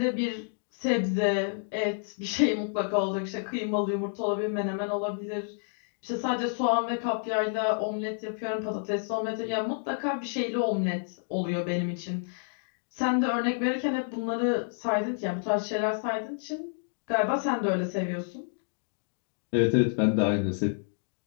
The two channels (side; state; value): right; silent; digital silence